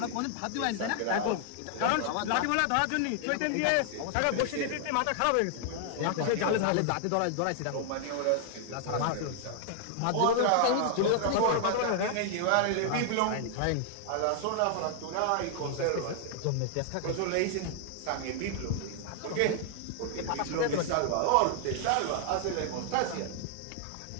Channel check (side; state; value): both; different; correlation 0.00